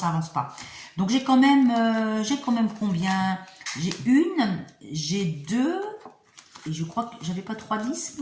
avance pas. Donc j'ai quand même combien? J'ai une, j'ai deux. Et je crois que j'avais pas 3-10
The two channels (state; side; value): identical; both; correlation 1.00